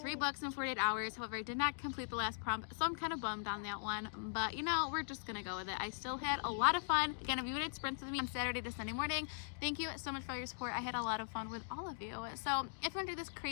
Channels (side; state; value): right; silent; digital silence